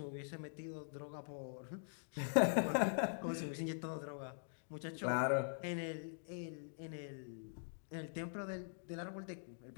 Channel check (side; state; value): right; silent; digital silence